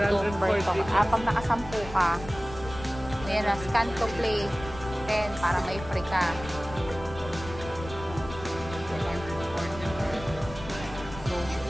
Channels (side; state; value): left; noise; rumble, 13 dB below the sound